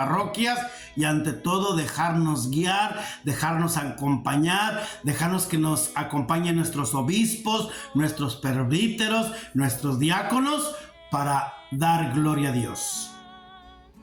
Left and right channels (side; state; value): both; identical; correlation 1.00